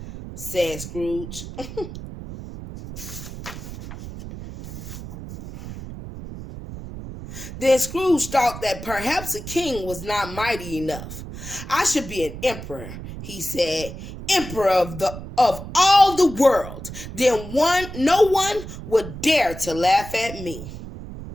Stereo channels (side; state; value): right; noise; rumble, 11 dB below the sound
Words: said Scrooge. Then Scrooge thought that perhaps a king was not mighty enough. I should be an emperor, he said, emperor of all the world. Then no one would dare to laugh at me.